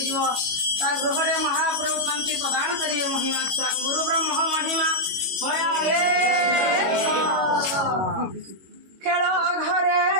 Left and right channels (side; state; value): left; late; 22 ms